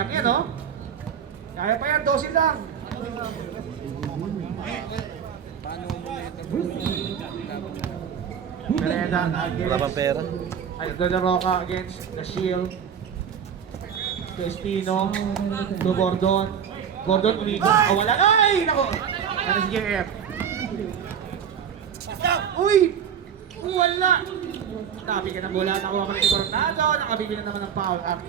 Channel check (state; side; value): quieter; left; 8.0 dB